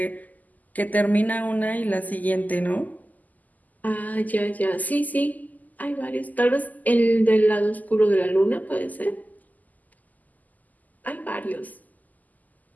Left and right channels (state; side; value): late; right; 0.081 ms